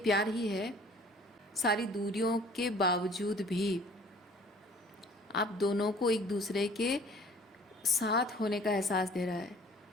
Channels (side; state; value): both; normal; correlation 0.51